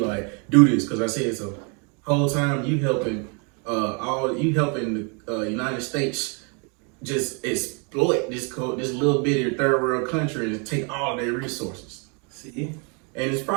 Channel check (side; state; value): left; quieter; 35.5 dB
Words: do this, cause I said so. Whole time you helping the United States just exploit this little bitty third world country and take all their resources. See? And it's